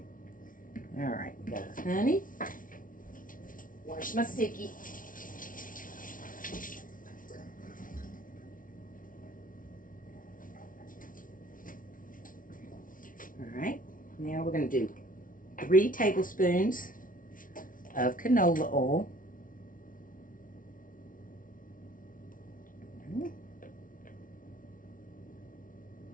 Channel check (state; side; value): late; right; 0.39 ms